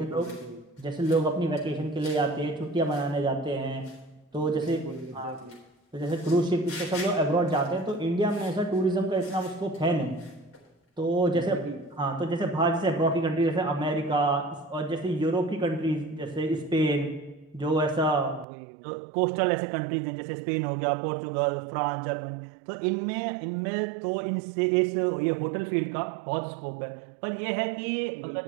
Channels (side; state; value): left; drops out; at 18.4 s